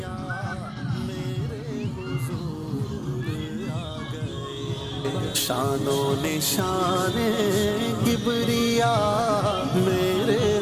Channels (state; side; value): identical; both; correlation 1.00